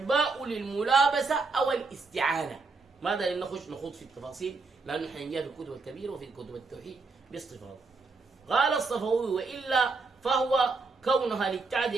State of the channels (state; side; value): quieter; left; 4.0 dB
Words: للملابسة أو الاستعانة. ماذا نخوض في التفاصيل، لأنه حنجاء في الكتب الكبيرة وفي كتب التوحيد باستفاضة. قال الصفوي: وإلا فهو كونها